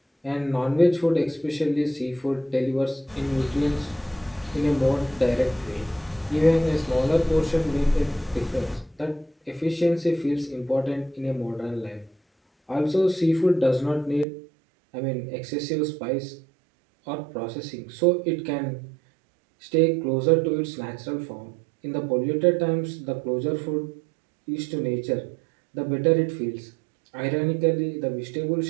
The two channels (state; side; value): drops out; left; at 14.2 s